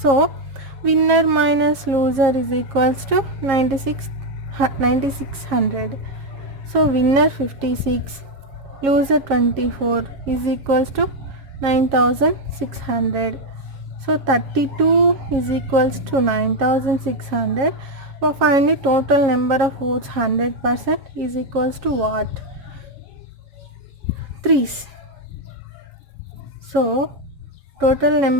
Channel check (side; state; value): left; late; 7.3 ms